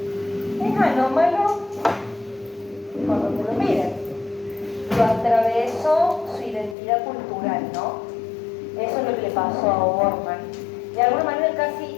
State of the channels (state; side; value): drops out; right; at 6.8 s